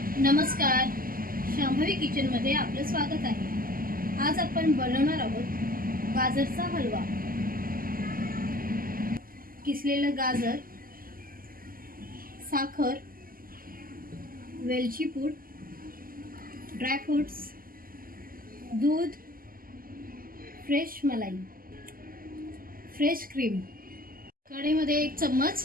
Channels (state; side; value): late; left; 0.42 ms